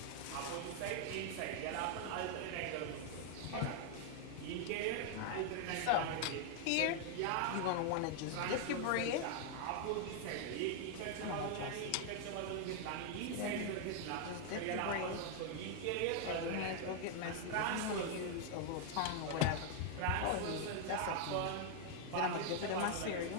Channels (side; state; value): both; different; correlation 0.00